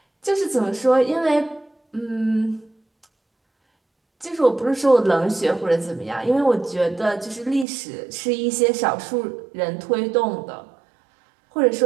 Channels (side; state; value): left; drops out; at 7.7 s